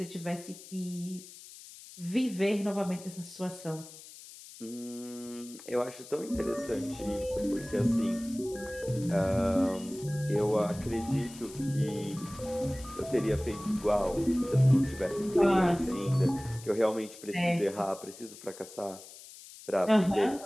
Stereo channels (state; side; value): noise; left; hiss, 17 dB below the sound